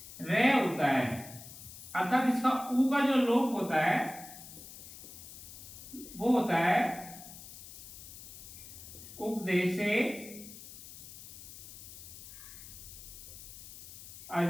रे होता है, अर्थात इसका ऊ का जो लोप होता है वो होता है उपदेशे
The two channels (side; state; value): left; noise; hiss, 14 dB below the sound